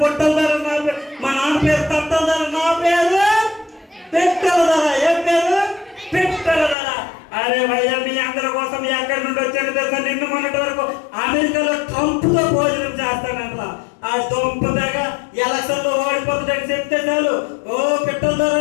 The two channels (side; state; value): right; drops out; at 6.8 s